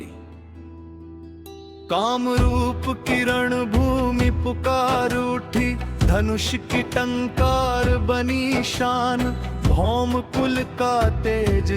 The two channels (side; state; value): both; identical; correlation 1.00